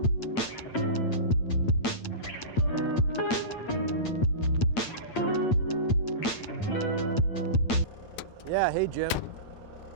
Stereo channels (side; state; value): right; late; 8.9 ms